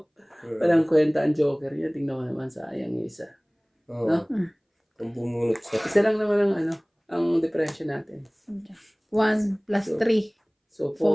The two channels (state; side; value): identical; both; correlation 1.00